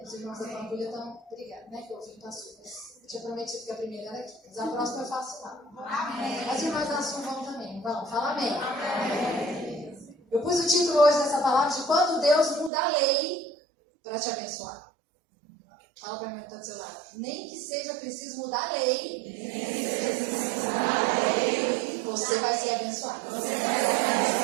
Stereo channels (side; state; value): left; drops out; at 12.7 s